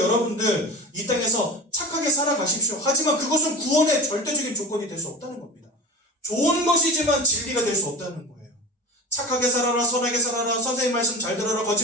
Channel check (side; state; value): both; normal; correlation 0.31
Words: 이 땅에서 착하게 살아가십시오. 하지만 그것은 구원의 절대적인 조건이 될 수 없다는 겁니다. 좋은 것이지만 진리가 될 수 없다는 거예요. 착하게 살아라, 선하게 살아라, 선생님 말씀 잘 들어라,